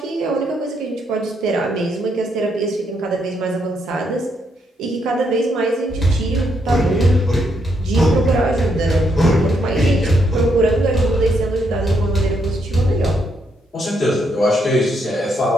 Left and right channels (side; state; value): both; normal; correlation 0.76